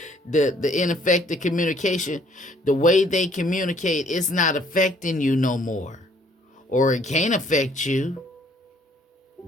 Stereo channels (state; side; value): normal; both; correlation 0.62